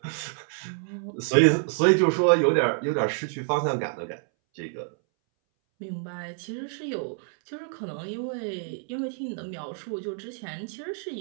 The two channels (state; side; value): silent; left; 60 dB below the other